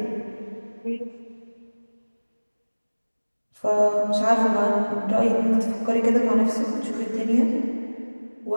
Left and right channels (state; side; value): inverted; both; correlation -1.00